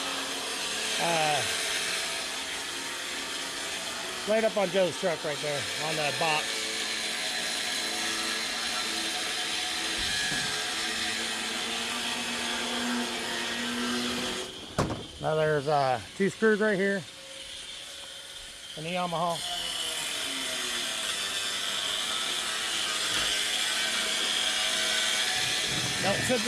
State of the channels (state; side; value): identical; both; correlation 1.00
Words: Right up on Joe's truck right there, on the box. Now there's 2 screws right here in the Yamaha. Don't set